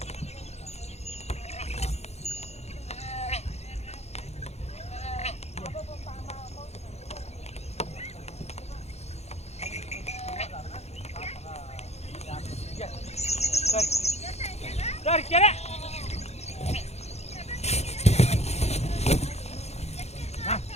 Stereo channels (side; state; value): right; late; 0.31 ms